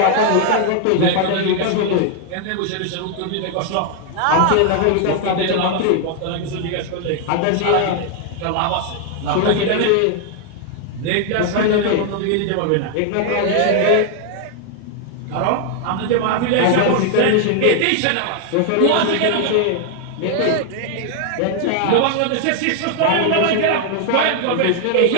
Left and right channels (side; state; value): both; different; correlation 0.00